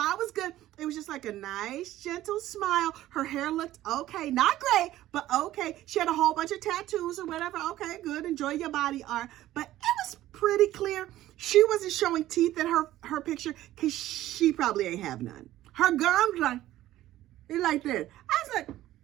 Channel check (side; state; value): left; quieter; 14.5 dB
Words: was good. It was just like a nice, gentle smile. Her hair looked okay. Not great, but okay. She had a whole bunch of tattoos or whatever. Okay, good. Enjoy your body art. But it was pretty clear. She wasn't showing teeth in her picture because she probably ain't have none. Her gums like this. I was like,